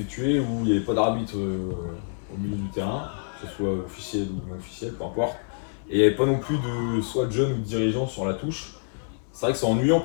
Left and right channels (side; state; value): right; silent; digital silence